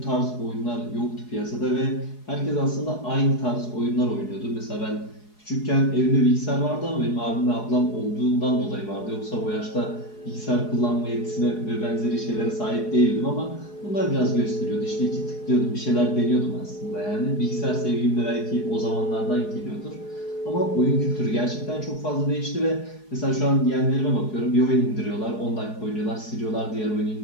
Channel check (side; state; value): right; late; 4.8 ms